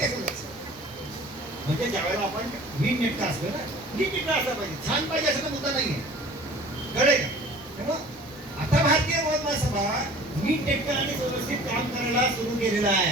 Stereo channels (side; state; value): both; normal; correlation 0.46